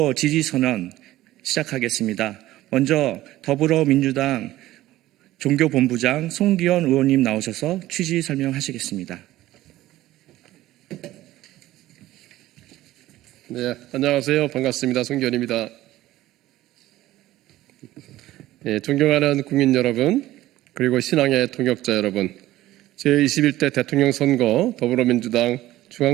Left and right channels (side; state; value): left; quieter; 15.6 dB